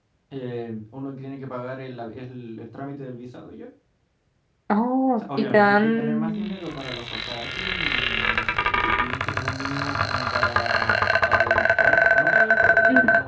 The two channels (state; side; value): identical; both; correlation 1.00